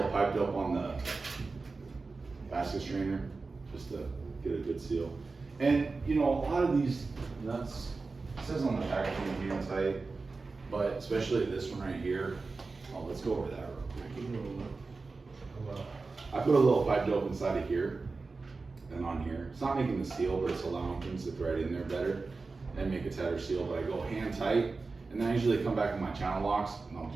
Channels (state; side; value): quieter; left; 4.0 dB